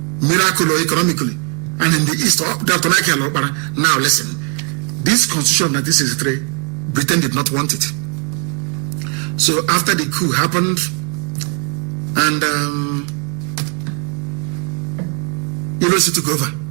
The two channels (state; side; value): quieter; left; 37.0 dB